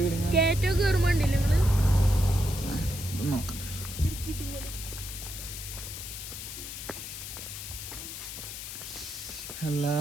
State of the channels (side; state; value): left; noise; hiss, 9 dB below the sound